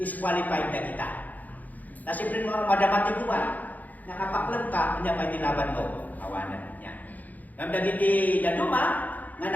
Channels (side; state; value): right; late; 0.081 ms